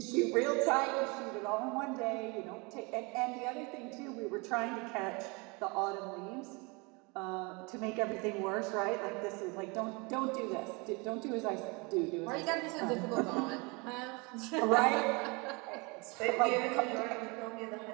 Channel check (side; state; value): left; quieter; 28.6 dB